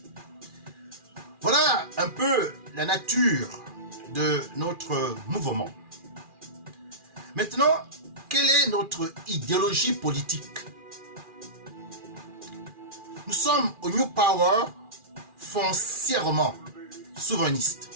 Voilà un peu la nature de notre mouvement. Maintenant, quelle est notre idéologie politique? Nous sommes au New Power foncièrement souverainistes,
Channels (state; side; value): late; left; 2.4 ms